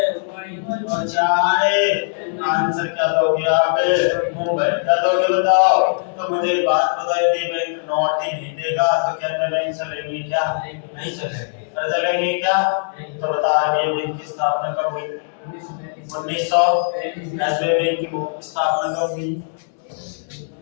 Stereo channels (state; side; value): silent; right; digital silence